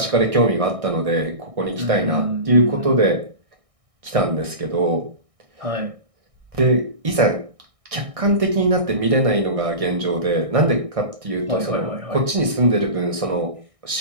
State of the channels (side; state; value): left; late; 1.6 ms